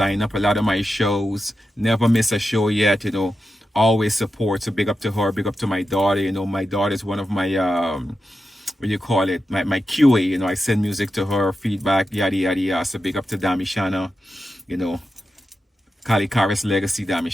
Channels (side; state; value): both; normal; correlation 0.90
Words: up a lot of my shows, never miss a show yet, always support. So big up to her, big up to my daughter. My daughter is one of my my QA. I send music to her, feedback, yada yada yada. So big up to Damishana, Colle Kharis legacy,